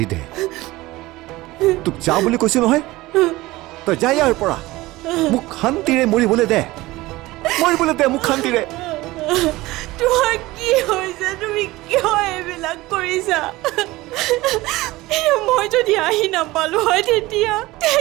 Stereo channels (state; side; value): quieter; left; 19.2 dB